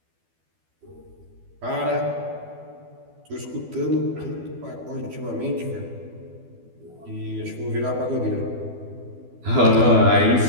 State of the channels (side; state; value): left; late; 12 ms